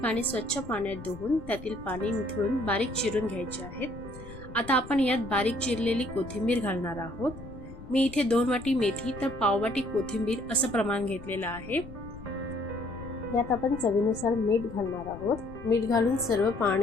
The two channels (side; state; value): left; noise; rumble, 15 dB below the sound